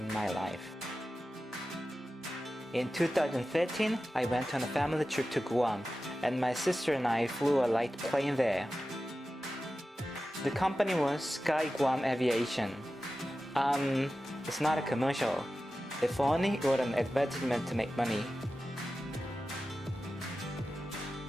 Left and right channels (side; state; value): both; normal; correlation 0.94